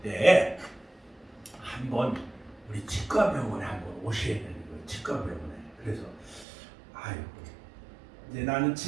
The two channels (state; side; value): drops out; left; at 6.5 s